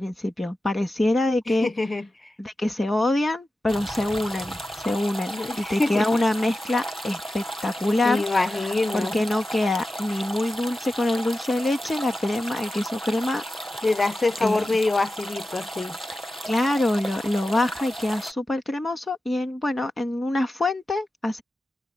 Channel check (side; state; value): both; normal; correlation 0.93